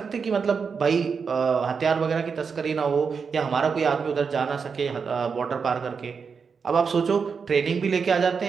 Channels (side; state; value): left; quieter; 5.7 dB